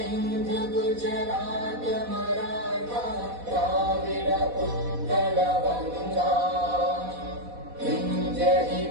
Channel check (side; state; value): left; late; 4.1 ms